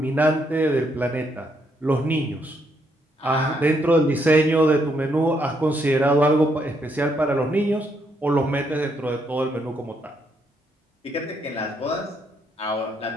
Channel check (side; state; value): both; normal; correlation 0.75